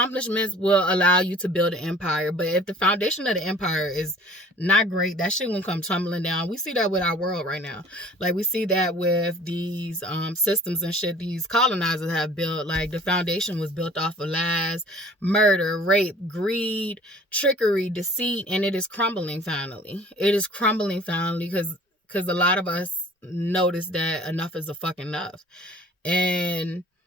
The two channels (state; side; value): normal; both; correlation 0.48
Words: will allow you to build an empire, but if the foundation of the empire is not great, that shit won't come tumbling down. We see that with our world right now. Like, we see that with these systems and shit these colonizers have built. Like, the foundation was built off of lies, murder, rape, greed, trickery, deceit, and it is crumbling finally. It is crumbling finally because a lot of us notice that enough is a fucking enough. And